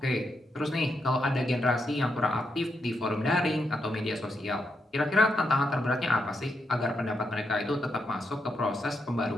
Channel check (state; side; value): normal; both; correlation 0.82